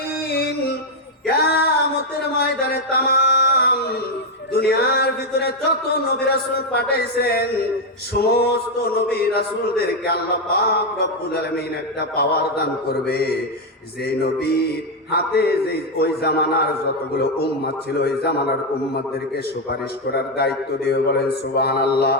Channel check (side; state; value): both; normal; correlation 0.04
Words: কিয়ামতের ময়দানে तमाम দুনিয়ার ভিতরে যত নবী রাসূল পাঠাইছেন সমস্ত নবী রাসূলদেরকে আল্লাহ পাক রব্বুল আলামিন একটা পাওয়ার দান করবে। যে নবীর হাতে যে ওই জামানার যতগুলো উম্মত ছিল ওই জামানার উম্মতদেরকে সুপারিশ করার দায়িত্ব দিয়ে। বলেন সুবহানাল্লাহ।